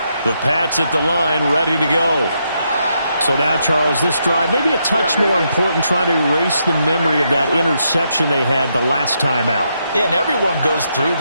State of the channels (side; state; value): both; inverted; correlation -0.79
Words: The Pats at the line, ready to go. So now, Charles, this drive maybe a touch more important, trying to erase the memory of that interception they had the last time out. Yeah, and everyone goes through